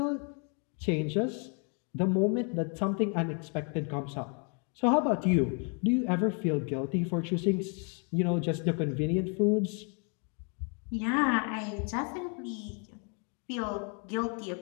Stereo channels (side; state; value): right; quieter; 38.2 dB